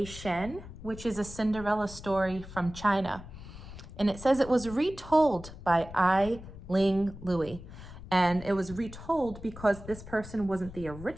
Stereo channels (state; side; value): noise; left; rumble, 14 dB below the sound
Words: Shen, which is a Cinderella story from China. And it says it was retold by Ai-Ling Louie. And it was retold because this person wasn't the